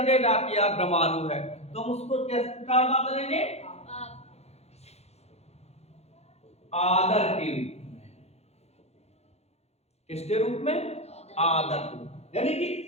कि यार गमारू है, तो हम उसको कैसे बात करेंगे? आदर के रूप में। किसके रूप में? आदर के रूप। यानी कि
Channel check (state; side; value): late; right; 0.31 ms